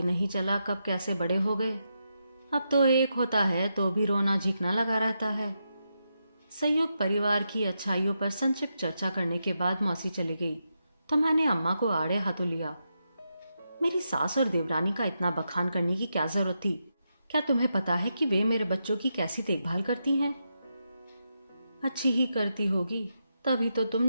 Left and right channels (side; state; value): both; inverted; correlation -0.85